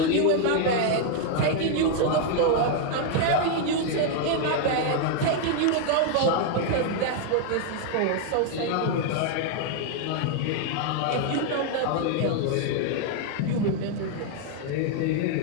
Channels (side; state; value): both; different; correlation 0.00